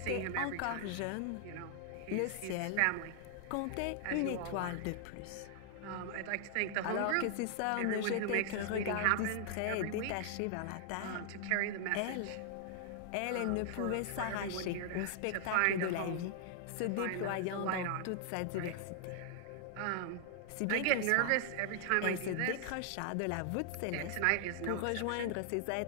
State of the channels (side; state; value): both; different; correlation 0.00